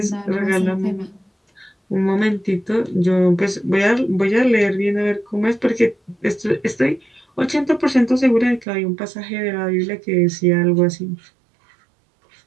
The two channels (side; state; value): left; drops out; at 8.7 s